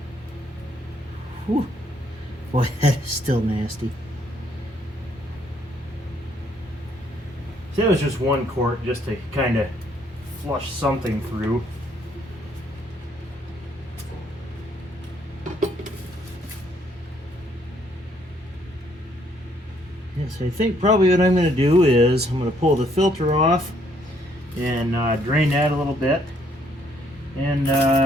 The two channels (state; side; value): normal; both; correlation 0.68